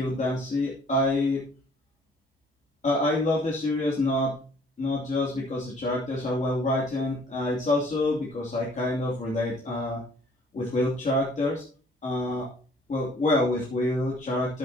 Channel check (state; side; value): normal; both; correlation 0.57